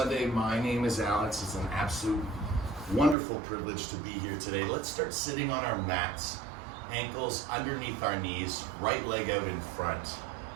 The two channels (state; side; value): drops out; left; at 3.2 s